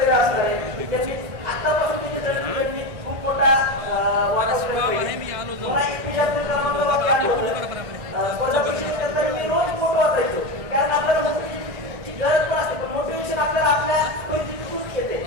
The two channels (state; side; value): late; left; 1.6 ms